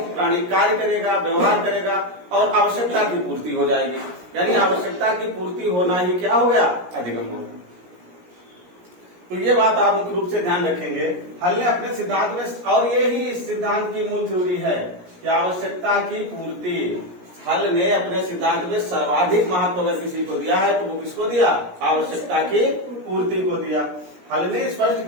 कार्य करेगा, व्यवहार करेगा, और आवश्यकता की पूर्ति हो जाएगी। यानी आवश्यकता की पूर्ति होना ही क्या हो गया, अधिगम हो गया। तो ये बात आप मुख्य रूप से ध्यान रखेंगे। हल ने अपने सिद्धांत में, और ये ही इस सिद्धांत की मूल थ्योरी है कि आवश्यकता की पूर्ति, हल ने अपने सिद्धांत में सर्वाधिक महत्व अगर किसी को दिया है तो वो किसको दिया, आवश्यकता की पूर्ति को दिया। हल ने स्पष्ट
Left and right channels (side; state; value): left; late; 17 ms